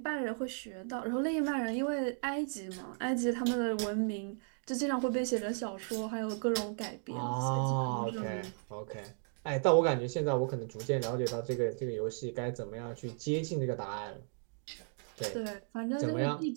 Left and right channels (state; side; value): silent; left; 54 dB below the other